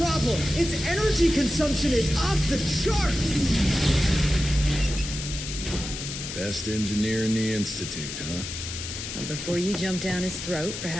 problem. Its energy consumption is off the charts. Best engineer in the Institute, huh? Well, before you jump down his throat,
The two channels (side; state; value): left; noise; hiss, 7 dB below the sound